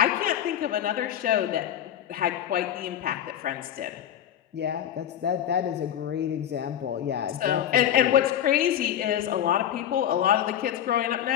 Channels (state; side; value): quieter; right; 10.6 dB